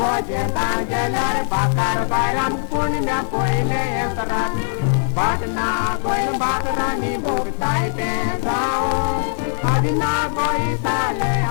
Oje tangelar bakar bayram kuni me poile entarat Batna goy bakarani bogtai pe sao Adina goy tale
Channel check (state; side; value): silent; right; 66 dB below the other